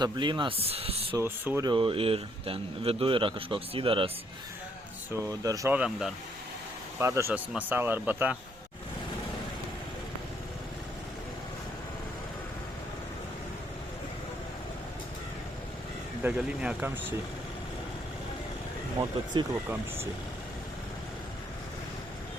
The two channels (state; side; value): normal; both; correlation 0.70